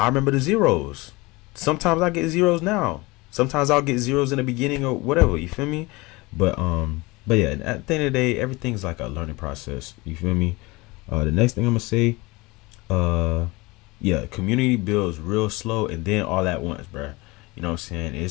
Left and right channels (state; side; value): quieter; right; 23.3 dB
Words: remember the zeros. Sometimes I get zeros now. Sometimes I'll get zeros in the beginning or whatever. You feel me? But yeah, at the end of the day, everything's like a learning process. You feel me? The next thing I'm gonna say, uh, yeah, community builds real slow and then all at once, bruh. You know what I'm saying?